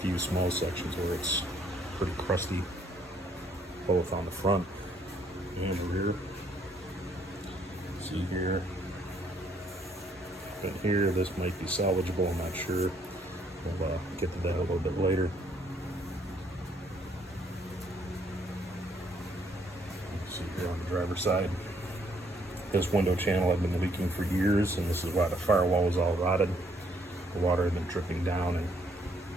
few small sections where it's pretty crusty, both on the front and the rear. See here and here, this might be salvageable, I'm not sure. We'll get to that a little bit later. See here on the driver's side, this window channel had been leaking for years, and this is why the firewall was all rotted. The water had been dripping down and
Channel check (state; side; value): normal; both; correlation 0.68